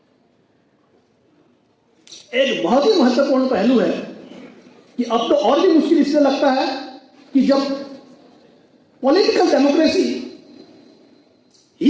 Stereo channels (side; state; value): both; identical; correlation 1.00